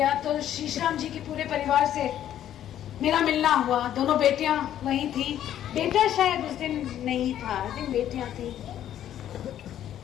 तो शीशराम जी के पूरे परिवार से मेरा मिलना हुआ। दोनों बेटियां वहीं थी, बेटा शायद उस दिन नहीं था, आई थिंक बेटियां थी।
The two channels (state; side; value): quieter; right; 11.2 dB